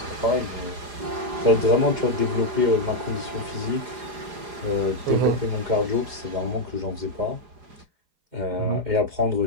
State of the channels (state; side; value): late; left; 4.9 ms